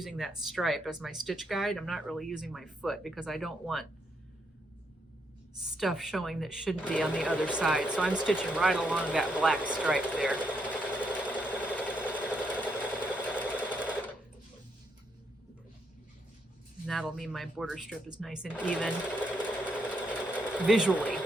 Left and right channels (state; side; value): normal; both; correlation 0.77